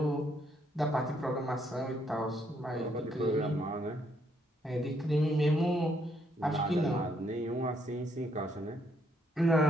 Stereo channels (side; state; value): both; normal; correlation 0.72